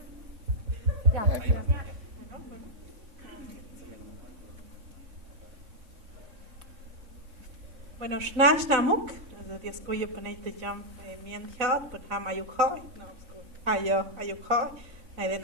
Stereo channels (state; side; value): late; left; 3.9 ms